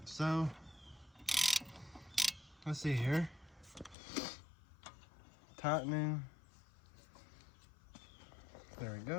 So let's see here. Tightening. There we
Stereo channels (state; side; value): drops out; right; at 4.0 s